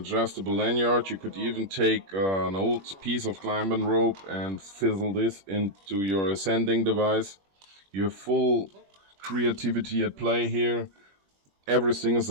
lanyard. You could even take an old piece of climbing rope and fizzle this into your ascending device. You have full creativity at play here. Everything is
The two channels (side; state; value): left; late; 21 ms